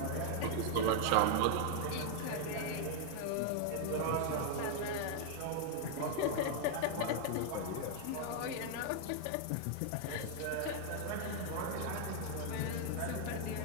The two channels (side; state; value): both; different; correlation 0.00